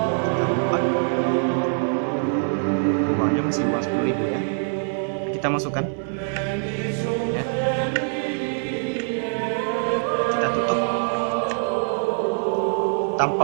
Kita lipat. Uangnya masih uang 10.000 ya. Kita masukkan. Ya. Kita tutup tanpa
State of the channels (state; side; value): silent; left; 63 dB below the other